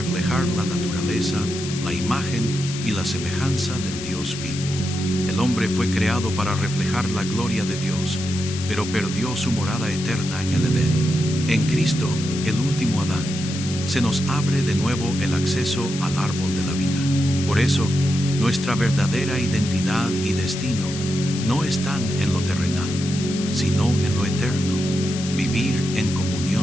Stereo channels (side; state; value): left; noise; hiss, 9 dB below the sound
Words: la naturaleza, la imagen y la semejanza del Dios vivo. El hombre fue creado para reflejar la gloria de Dios, pero perdió su morada eterna en el Edén. En Cristo, el último Adán, se nos abre de nuevo el acceso al árbol de la vida. Por eso, nuestra verdadera identidad y destino no están en lo terrenal, sino en lo eterno, vivir en